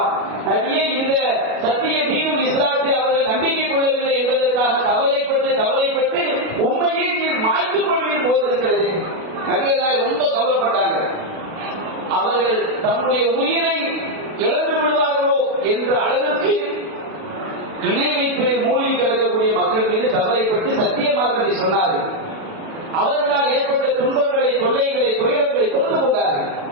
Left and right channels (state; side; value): late; left; 36 ms